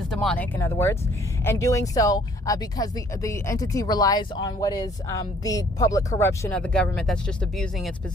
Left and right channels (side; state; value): both; normal; correlation 0.60